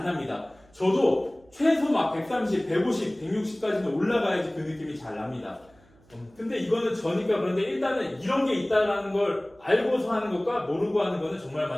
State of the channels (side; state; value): right; noise; hum, 30 dB below the sound